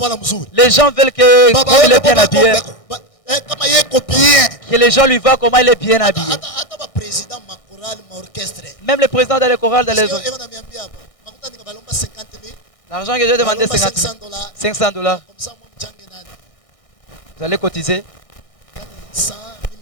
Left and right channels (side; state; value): right; late; 1.6 ms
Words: Les gens veulent que comme il est bien habillé, que les gens lui voient comment il est bien habillé. Même le président dans les chorales, dans les autres. L'argent que j'ai demandé, 50 000. 500 $. Vous allez cotiser.